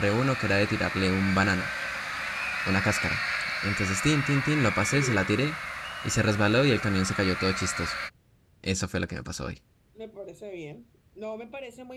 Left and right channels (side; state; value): both; identical; correlation 1.00